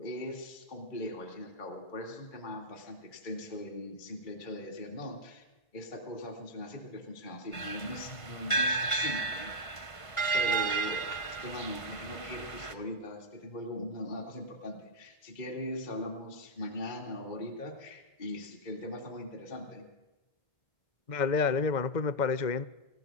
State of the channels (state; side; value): late; right; 1.5 ms